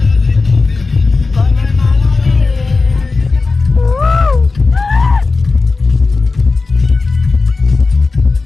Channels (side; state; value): right; quieter; 3.9 dB